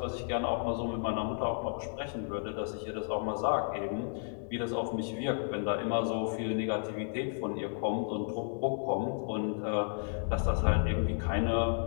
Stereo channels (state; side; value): silent; right; digital silence